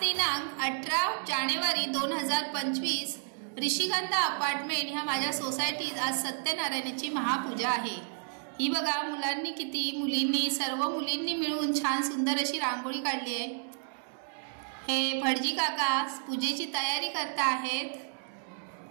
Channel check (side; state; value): left; silent; 57 dB below the other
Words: 18 जानेवारी 2025 ऋषिगंधा अपार्टमेंट ह्या माझ्या सोसायटीत आज सत्यनारायणाची महापूजा आहे। ही बघा, मुलींनी सर्व मुलींनी मिळून छान सुंदर अशी रांगोळी काढली आहे। हे भटजी काका पूजेची तयारी करत आहेत।